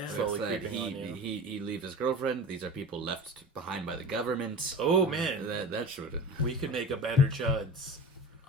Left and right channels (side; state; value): both; normal; correlation 0.33